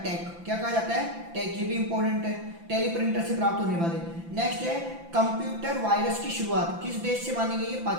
टैग। क्या कहा जाता है? टैग। ये भी इंपॉर्टेंट है, टेलीप्रिंटर से प्राप्त होने वाले। नेक्स्ट है, कंप्यूटर वायरस की शुरुआत किस देश से मानी गई है?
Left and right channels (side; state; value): left; late; 5.9 ms